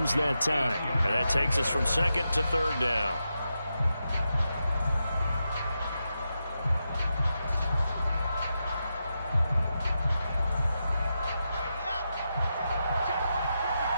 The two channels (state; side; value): inverted; both; correlation -0.87